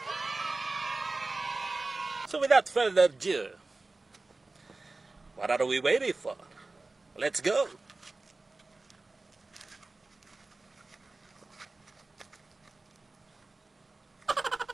So without further ado, what are we waiting for? Let's go!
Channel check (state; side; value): quieter; left; 3.4 dB